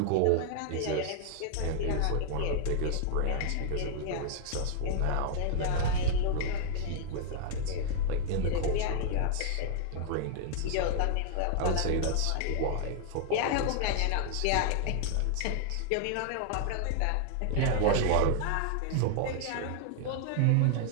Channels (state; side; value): different; both; correlation 0.00